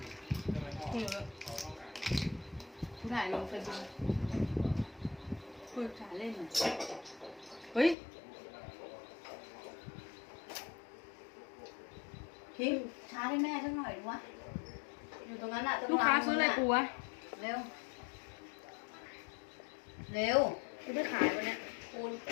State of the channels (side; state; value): right; drops out; at 8.0 s